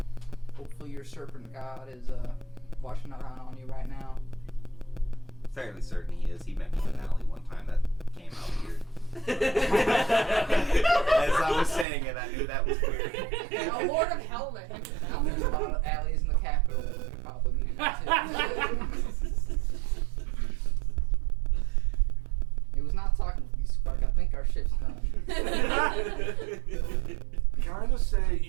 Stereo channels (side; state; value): left; drops out; at 11.9 s